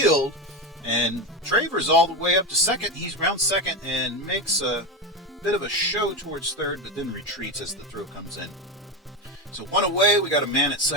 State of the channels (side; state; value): both; normal; correlation 0.16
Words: And Traver's all the way up to second. He's round second and makes a bit of a show towards third, but then retreats as the throw comes in. So 1 away. We got a man at